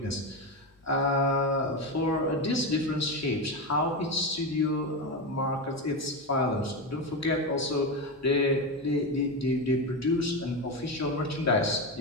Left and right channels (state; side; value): normal; both; correlation 0.15